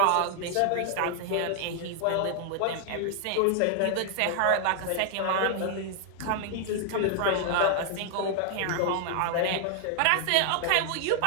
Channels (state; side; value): different; both; correlation 0.00